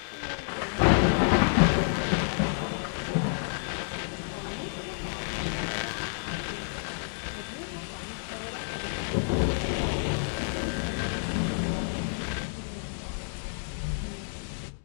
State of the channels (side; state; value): right; silent; digital silence